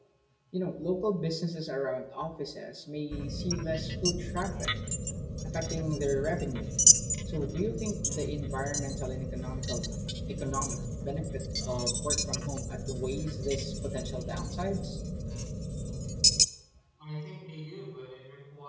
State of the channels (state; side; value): identical; both; correlation 1.00